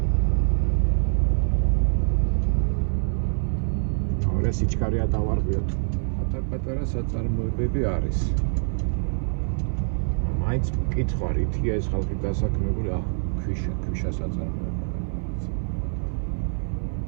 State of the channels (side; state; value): left; silent; 57 dB below the other